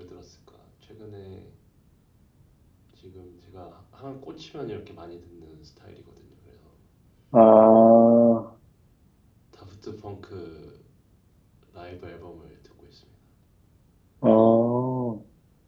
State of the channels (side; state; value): both; identical; correlation 1.00